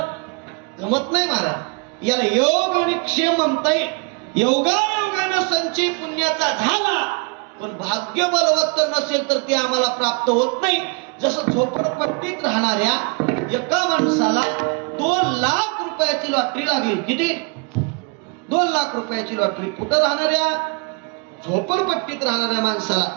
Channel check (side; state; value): left; quieter; 32.6 dB